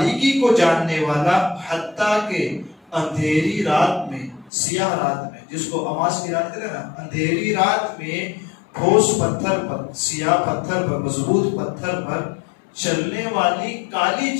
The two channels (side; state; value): right; drops out; at 4.5 s